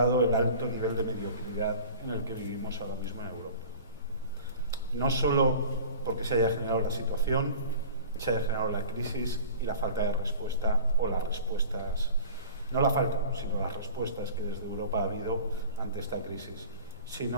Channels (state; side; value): inverted; both; correlation -0.41